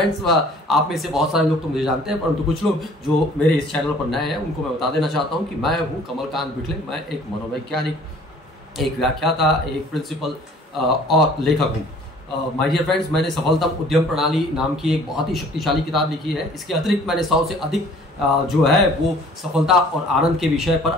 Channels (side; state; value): both; normal; correlation 0.53